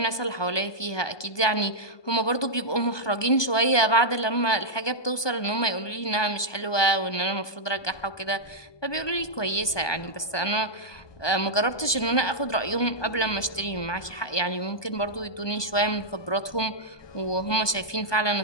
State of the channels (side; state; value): right; late; 1.2 ms